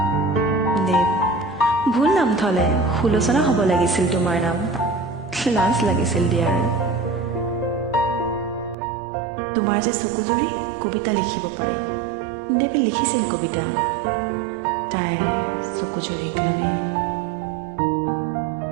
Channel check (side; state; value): left; drops out; at 8.8 s